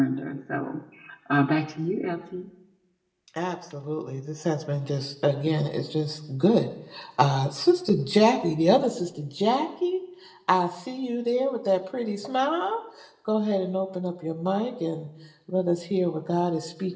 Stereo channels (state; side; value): identical; both; correlation 1.00